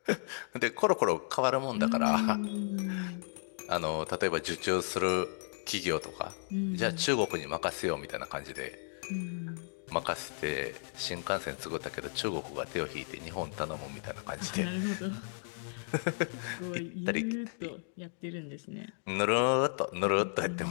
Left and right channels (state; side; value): silent; right; digital silence